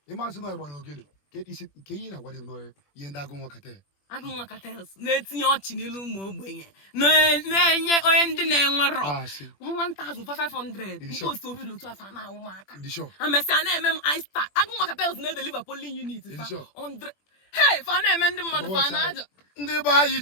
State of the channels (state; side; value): late; right; 21 ms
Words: ịmasị na ịgba n'ogene ke ihe na-agwa m n'ọhịa ihe ndị agụ nwakata na-etinye ọchị n'ilu ụmụ ogbenye na-enye onye ndị na-enwerọ 1,500 nke osi obi otu afọ na-awụ m aka amesịa na-eme m ista agụ nwakata na-edeliva polling unit 100 hey fa na-eme ndị mmadụ fa na-aja ndị be anyị